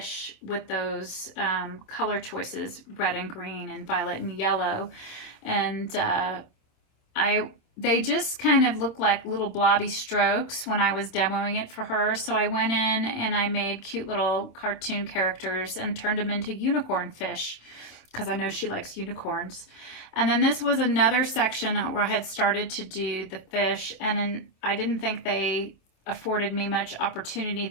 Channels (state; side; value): late; right; 26 ms